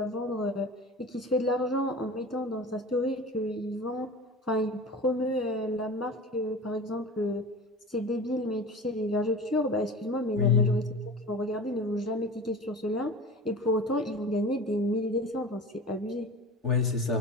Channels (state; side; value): normal; both; correlation 0.35